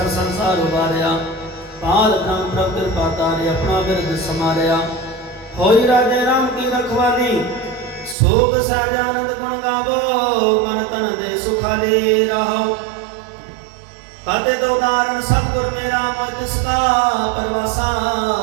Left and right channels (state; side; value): drops out; left; at 8.2 s